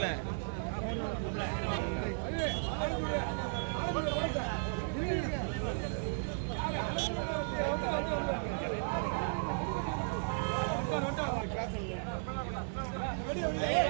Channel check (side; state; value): left; silent; digital silence